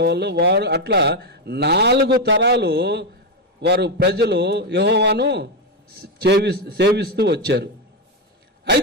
వారు అట్లా 4 తరాలు వారు ప్రజలు యెహోవాను సేవిస్తూ వచ్చారు.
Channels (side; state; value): both; normal; correlation 0.06